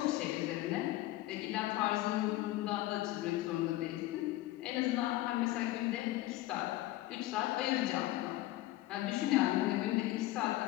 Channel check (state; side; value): quieter; right; 16.5 dB